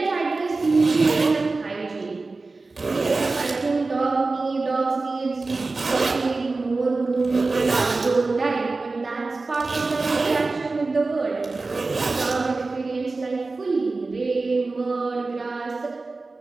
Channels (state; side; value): quieter; left; 3.6 dB